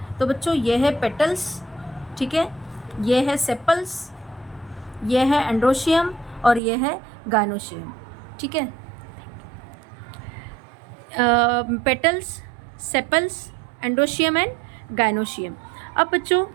तो बच्चों ये है पेटल्स, ठीक है, ये है सेपल्स, ये है एंड्रोशियम और ये है गाइनोशियम, ठीक है। Petals, sepals, androecium and gynoecium. अब बच्चों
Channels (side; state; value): left; drops out; at 6.6 s